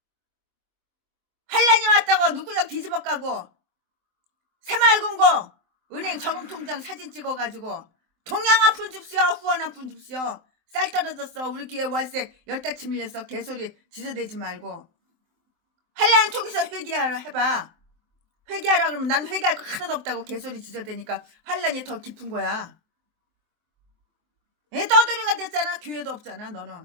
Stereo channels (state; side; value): late; left; 23 ms